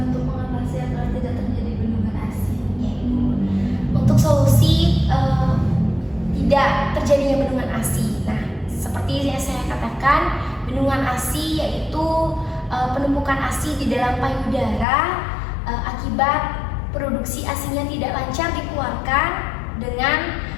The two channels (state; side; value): drops out; right; at 14.9 s